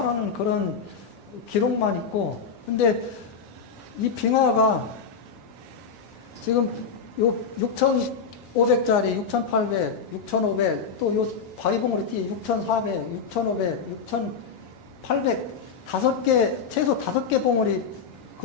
그런 기록만 있고 근데 이 빙하가 지금 요 6,500짜리 6,800, 6,500 또 요 바위봉우리 띠 6,400, 6,500, 6,800 최소 5개 봉우리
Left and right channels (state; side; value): quieter; right; 5.7 dB